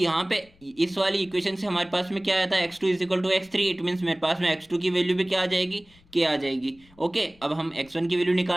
पे इस वाली इक्वेशन से हमारे पास में क्या आता है, x2 = x3, इट मीन्स मेरे पास में x2 की वैल्यू भी क्या आ जाएगी, k आ जाएगी। ओके, अब हम x1 की वैल्यू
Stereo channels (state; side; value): noise; left; rumble, 29 dB below the sound